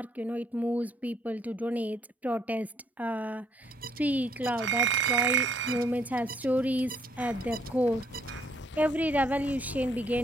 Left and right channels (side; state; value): both; normal; correlation 0.68